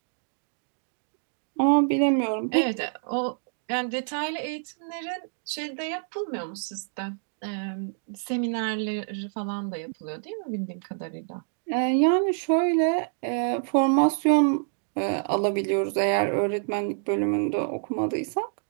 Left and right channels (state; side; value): silent; left; digital silence